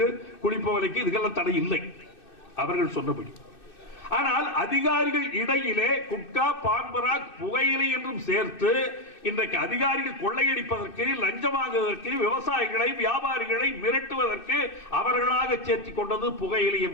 குழி புகையிலைக்கு இதுக்கெல்லாம் தடை இல்லை அவர்கள் சொன்னபடி. ஆனால் அதிகாரிகள் இடையிலே குட்கா, பான்பராக், புகையிலை என்றும் சேர்த்து இன்றைக்கு அதிகாரிகள் கொள்ளையடிப்பதற்கு, லஞ்சம் வாங்குவதற்கு, விவசாயிகளை, வியாபாரிகளை மிரட்டுவதற்கு அவர்களாக சேர்த்து கொண்டது புகையிலை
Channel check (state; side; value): late; right; 2.6 ms